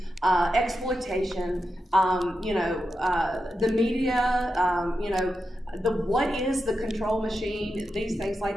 exploitation, the media, what is the control machine, these things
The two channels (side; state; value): both; normal; correlation 0.89